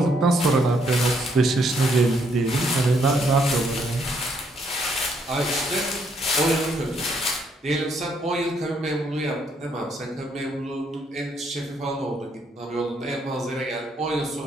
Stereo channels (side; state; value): both; normal; correlation 0.71